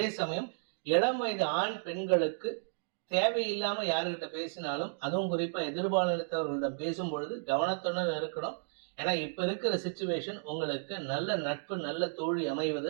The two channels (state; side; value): silent; left; digital silence